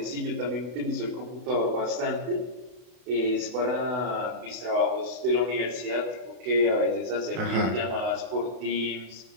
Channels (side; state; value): left; late; 32 ms